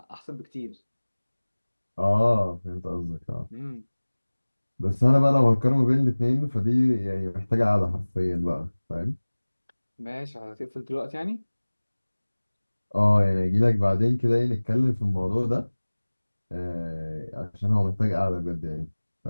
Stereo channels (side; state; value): both; inverted; correlation -1.00